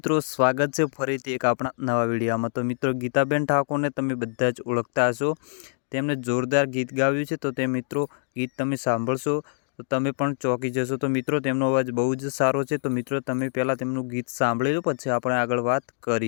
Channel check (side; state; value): right; silent; digital silence